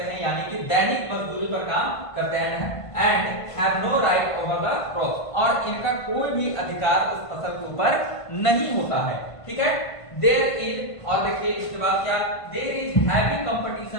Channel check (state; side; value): late; right; 1.5 ms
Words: हैं, यानी कि दैनिक मजदूरी पर काम करते हैं। And have no right over the crop, और इनका कोई भी अधिकार उस फसल के ऊपर नहीं होता है। ठीक है, देयर इज, और देखिए इसके बाद क्या, there is heavy